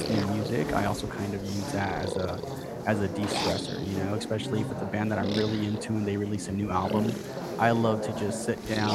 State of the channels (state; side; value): identical; both; correlation 1.00